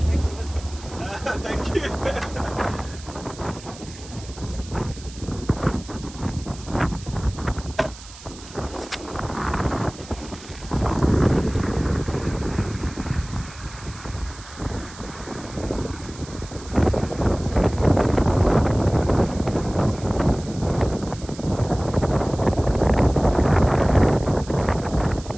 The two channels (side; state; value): right; noise; hiss, 18 dB below the sound